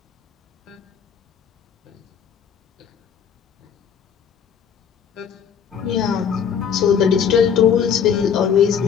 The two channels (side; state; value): right; quieter; 7.6 dB